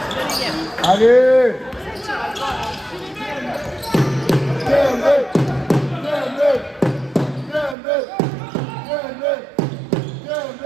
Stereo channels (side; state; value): left; drops out; at 7.8 s